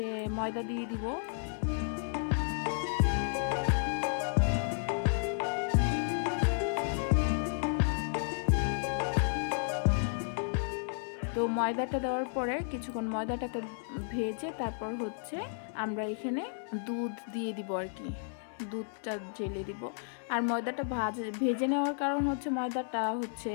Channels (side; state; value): right; silent; 56 dB below the other